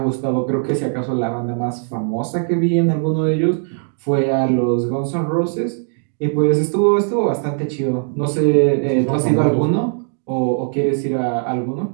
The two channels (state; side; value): silent; left; digital silence